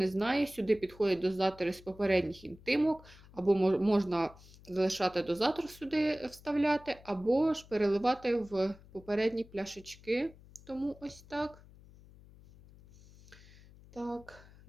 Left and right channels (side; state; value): left; noise; hum, 22 dB below the sound